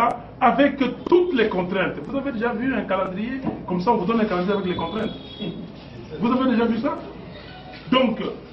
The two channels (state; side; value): identical; both; correlation 1.00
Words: avec toutes les contraintes. Vous avez déjà vu un calendrier? Comme ça, on vous donne un calendrier avec les contraintes. Vous avez déjà vu ça? Donc,